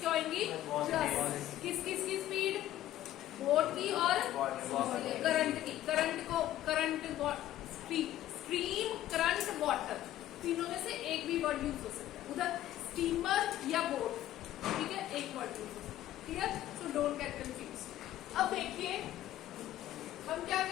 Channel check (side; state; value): right; quieter; 13.3 dB